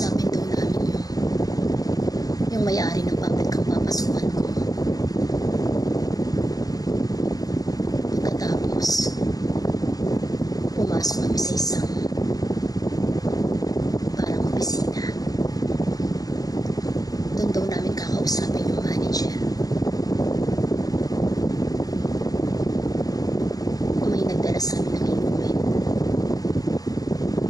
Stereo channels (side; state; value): right; late; 0.18 ms